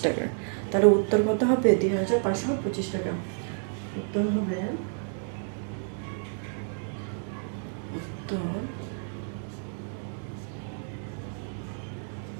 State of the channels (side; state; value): left; silent; 58 dB below the other